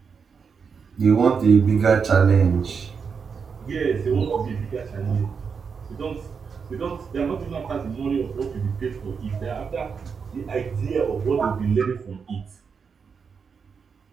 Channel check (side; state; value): left; quieter; 5.9 dB